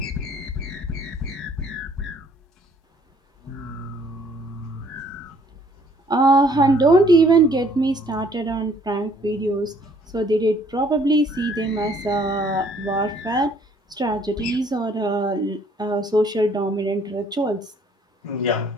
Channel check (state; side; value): normal; both; correlation 0.60